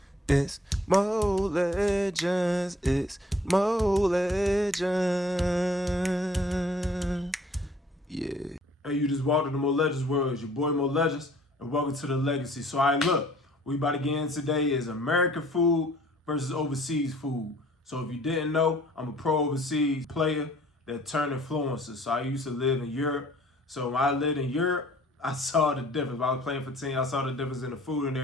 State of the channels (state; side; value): normal; both; correlation 0.56